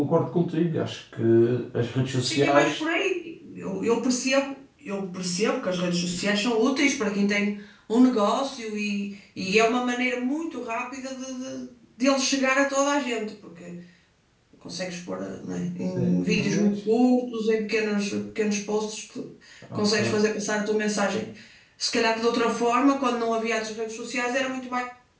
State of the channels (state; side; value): identical; both; correlation 1.00